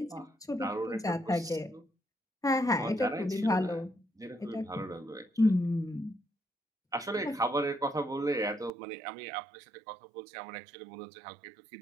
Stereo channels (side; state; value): left; drops out; at 8.7 s